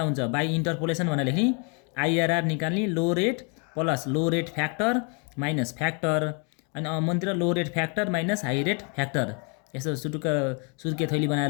हुन्छ बाई इन्टरपोलेसन भनेर लेख्ने, आइआरआर निकाल्ने, low rate plus low rate factor minus factor, अनि मन्तिर low rate factor minus high rate factor, यसो सुर्के थैली बनाएर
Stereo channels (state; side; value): quieter; right; 36.3 dB